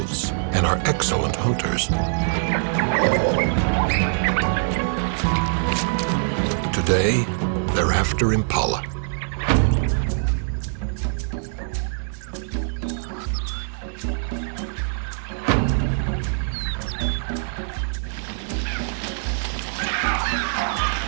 and are excellent hunters. Today, they're after impala.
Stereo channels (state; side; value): silent; left; digital silence